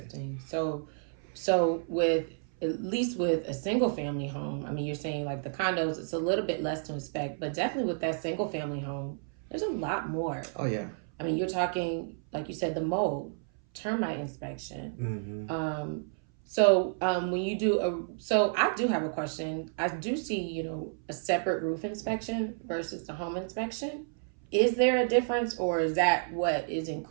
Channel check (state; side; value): silent; left; 57 dB below the other